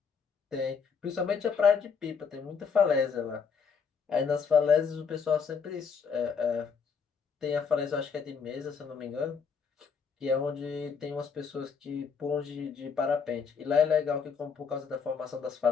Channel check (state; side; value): quieter; right; 6.0 dB